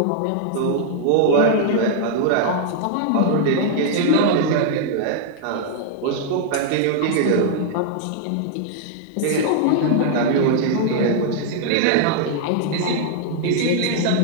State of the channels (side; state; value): both; different; correlation -0.01